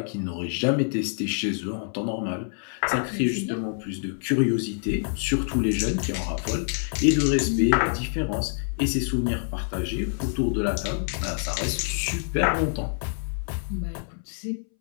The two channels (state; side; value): silent; right; 61 dB below the other